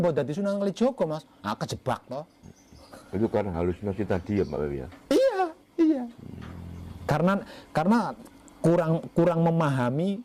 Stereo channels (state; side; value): identical; both; correlation 1.00